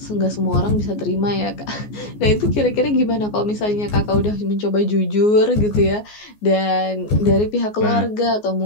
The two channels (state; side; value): late; right; 14 ms